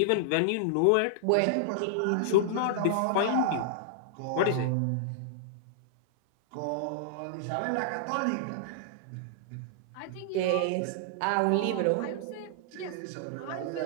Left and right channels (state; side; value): different; both; correlation -0.01